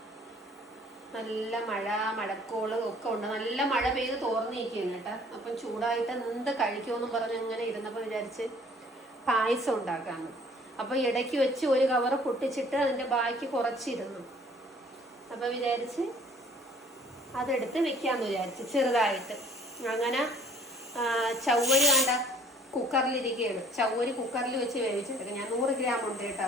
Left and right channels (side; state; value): both; normal; correlation 0.55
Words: മഴക്കോള് ഒക്കെ ഉണ്ട്. നല്ല മഴ പെയ്ത് തോർന്നിരിക്കുകയാണ് കേട്ടാ. അപ്പം ചൂടായിട്ട് എന്ത് കഴിക്കുമെന്നും പറഞ്ഞ് ഇങ്ങനെ ഇരുന്നപ്പോൾ വിചാരിച്ച് പായസം ഉണ്ടാക്കാന്ന്. അപ്പൊ ഇടയ്ക്ക് വെച്ച് ഒരു കവറ് പൊട്ടിച്ചിട്ട് അതിന്റെ ബാക്കി കുറച്ചിരുന്നു. അപ്പൊ വിചാരിച്ച് അതെടുത്ത് വെക്കാന്ന് വിചാരിച്ച് ചെറുതായിട്ട്. അങ്ങനെ ചവ്വരി വേണ്ട കുക്കറിലിരിക്കുകയാണ്. ചവ്വരി കുക്കറിൽ വെച്ച് വേവിച്ചെടുക്കുക. ഞാൻ 100 ഗ്രാം ഉണ്ട് കേട്ടാ